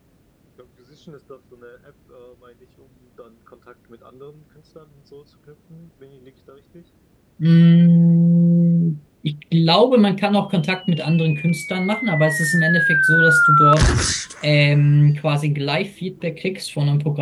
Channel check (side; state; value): both; identical; correlation 1.00